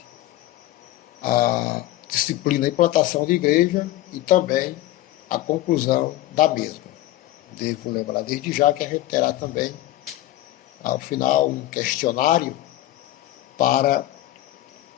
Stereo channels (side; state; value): right; quieter; 15.2 dB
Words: à disciplina e plantação de igreja e também a conclusão da mesma. Devo lembrar desde já que a gente terá também, ao final, um questionário para